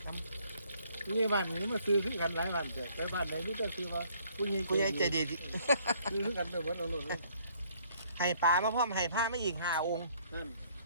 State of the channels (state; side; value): inverted; both; correlation -0.63